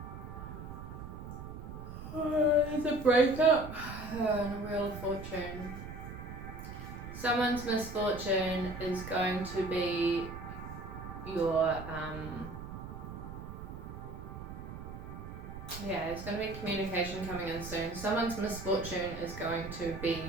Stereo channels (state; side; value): noise; right; rumble, 10 dB below the sound